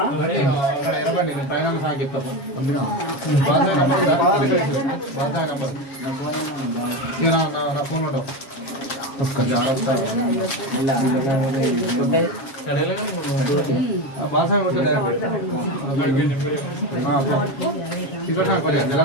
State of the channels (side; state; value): right; late; 7.4 ms